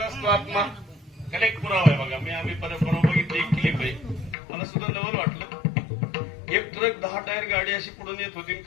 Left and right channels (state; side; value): drops out; right; at 4.4 s